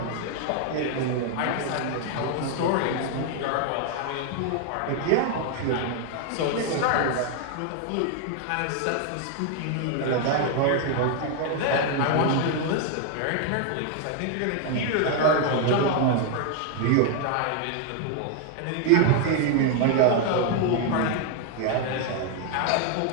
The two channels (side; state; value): both; different; correlation 0.00